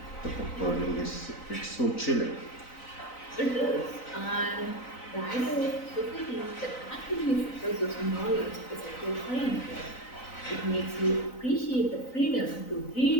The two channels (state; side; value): late; right; 3.9 ms